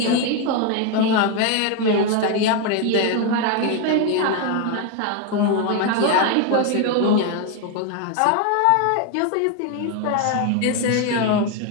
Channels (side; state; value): both; different; correlation 0.01